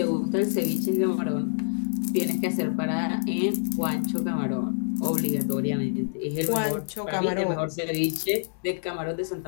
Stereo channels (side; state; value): right; silent; digital silence